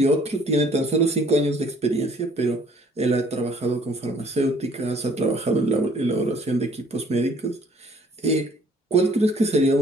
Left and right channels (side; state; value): both; normal; correlation 0.59